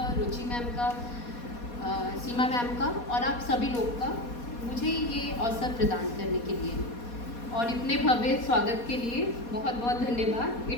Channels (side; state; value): right; late; 4.2 ms